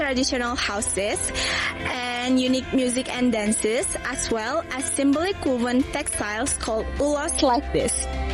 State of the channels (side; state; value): both; identical; correlation 1.00